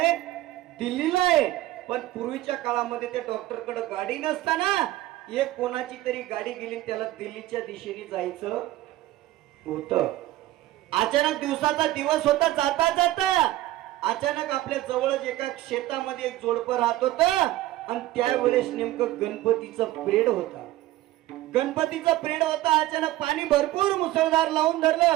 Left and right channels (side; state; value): left; quieter; 16.0 dB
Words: दिल्लीला आहे. पण पूर्वीच्या काळामध्ये त्या डॉक्टरकडे गाडी नसताना एक कोणाची तरी गाडी गेली, त्याला दिल्लीच्या दिशेने जायचं होतं. अचानक दिवसाचा दिवस होता, जाता जाता अचानक आपल्या जवळच एका शेतामध्ये एक जोडपं राहत होत आणि त्यावेळेस नेमकं गणपतीचा पिरियड होता. अचानक पाणी भरपूर मुसळधार लावून